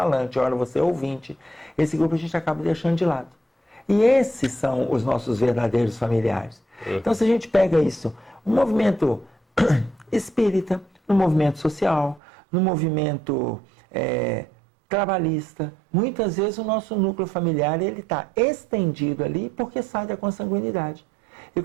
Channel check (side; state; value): left; drops out; at 12.2 s